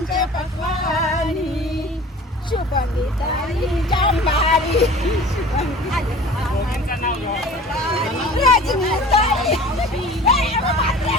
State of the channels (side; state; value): both; normal; correlation 0.43